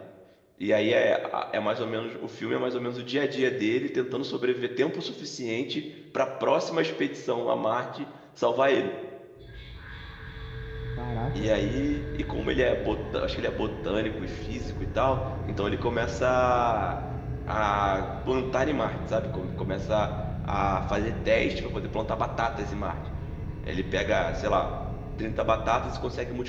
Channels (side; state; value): both; identical; correlation 1.00